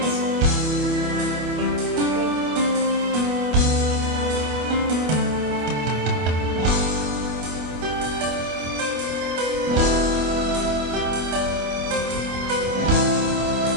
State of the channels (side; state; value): left; late; 25 ms